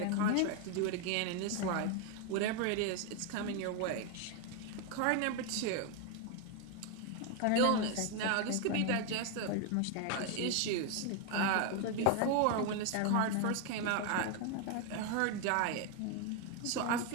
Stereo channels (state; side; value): different; both; correlation 0.01